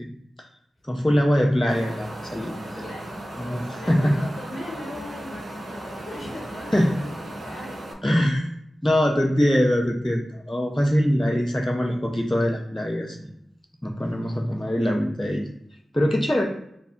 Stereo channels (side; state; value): both; normal; correlation 0.96